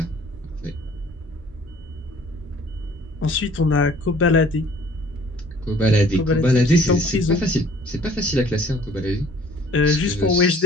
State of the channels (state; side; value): normal; both; correlation 0.54